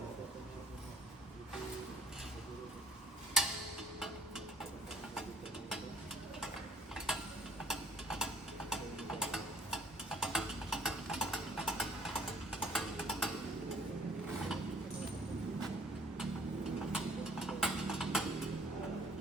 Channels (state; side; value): normal; both; correlation 0.58